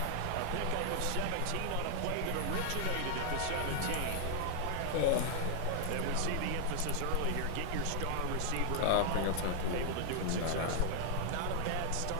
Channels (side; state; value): both; different; correlation -0.01